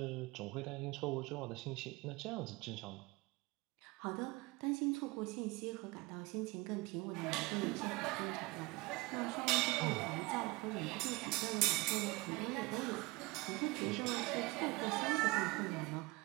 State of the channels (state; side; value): quieter; left; 23.3 dB